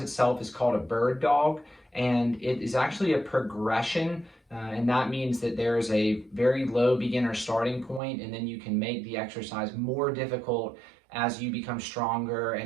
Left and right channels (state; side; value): drops out; left; at 8.0 s